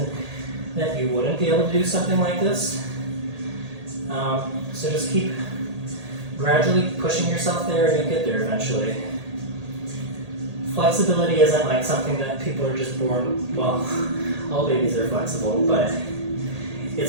that you wouldn't be able to do something like this. So just keep gradually pushing yourself there and you'll get there eventually. Flexibility isn't like something that people are just born, well, all babies are flexible, but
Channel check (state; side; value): late; left; 1.8 ms